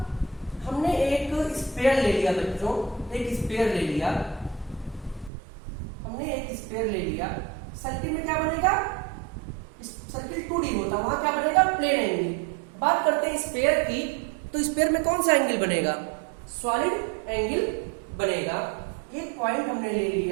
हमने एक स्फीयर ले लिया बच्चों, एक स्फीयर ले लिया, हमने एक स्फीयर ले लिया। सर्किल में क्या बनेगा? सर्किल 2D होता, वहां क्या बनेगा? Plane angle. बात करते हैं स्फीयर की, तो स्फीयर में कौन सा एंगल बनेगा? सॉलिड एंगल बनेगा। एक पॉइंट हमने ले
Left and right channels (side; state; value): left; drops out; at 5.3 s